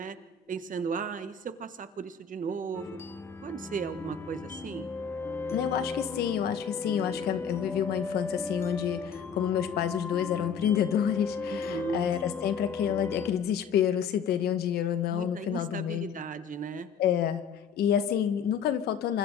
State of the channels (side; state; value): right; quieter; 6.5 dB